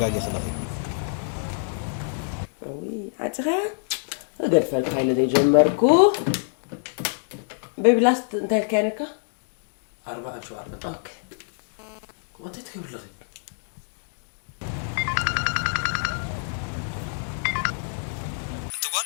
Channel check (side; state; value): right; silent; digital silence